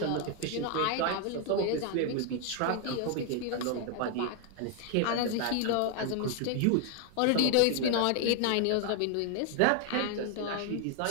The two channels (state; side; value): different; both; correlation 0.01